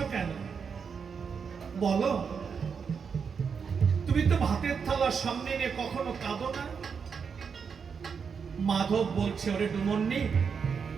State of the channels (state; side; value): quieter; left; 6.2 dB